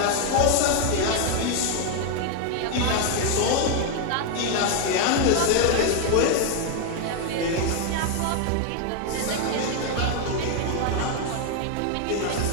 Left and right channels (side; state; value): both; different; correlation 0.01